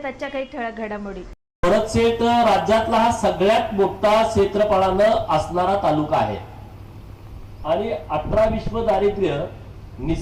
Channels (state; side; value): identical; both; correlation 1.00